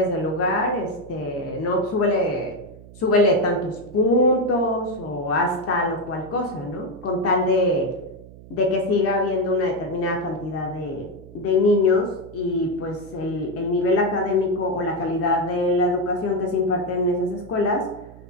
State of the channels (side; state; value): right; noise; hum, 19 dB below the sound